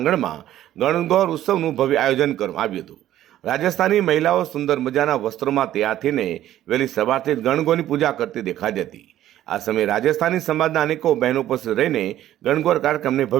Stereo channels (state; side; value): quieter; left; 12.8 dB